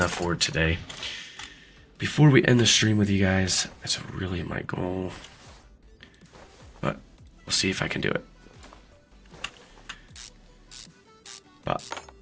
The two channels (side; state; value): both; identical; correlation 1.00